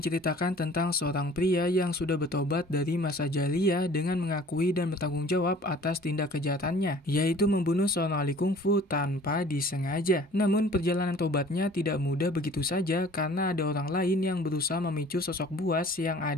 tentang seorang pria yang sudah bertobat dari masa jahiliyah dengan mengakui dan bertanggung jawab atas tindak kejahatannya, yaitu membunuh seorang ahli kungfu tanpa disengaja. Namun perjalanan tobatnya tidak mudah begitu saja karena ada orang lain yang berusaha memicu sosok buas yang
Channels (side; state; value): both; normal; correlation 0.50